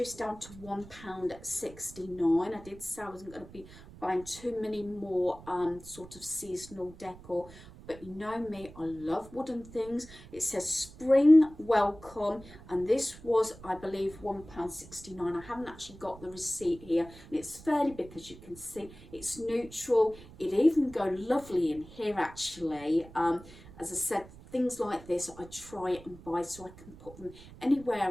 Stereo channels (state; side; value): noise; right; rumble, 18 dB below the sound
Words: down to £1.69. I did say I wasn't going to be buying too many more sort of seasonal decor but you know me, I love wooden things. It says spring welcome, and this was, I believe, £1.69. I haven't actually got the receipt here, and it's fairly big, as you can see. It's neutral. It even go lovely in here, actually. As I said, things like this I try and buy so I can put them